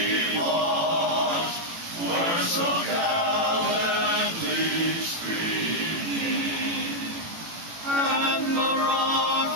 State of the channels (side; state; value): left; late; 18 ms